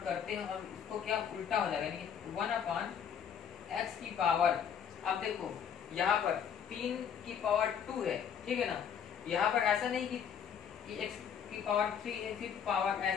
करते हैं और इसको क्या उल्टा हो जाएगा, यानी कि 1/x की पावर। अब देखो यहाँ पर 3 की पावर 2 है, ठीक है ना, यहाँ पर ऐसा नहीं कि x की पावर 3 है फिर पावर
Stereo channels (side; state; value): right; quieter; 8.0 dB